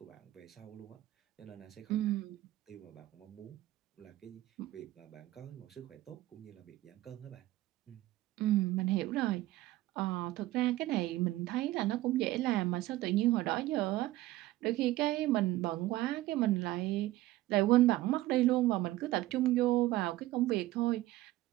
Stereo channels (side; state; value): left; quieter; 16.5 dB